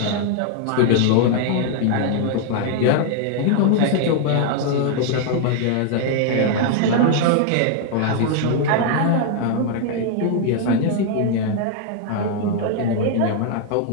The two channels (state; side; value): different; both; correlation 0.00